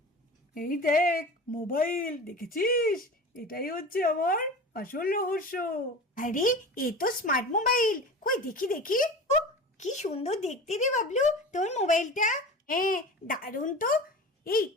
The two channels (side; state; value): both; normal; correlation 0.34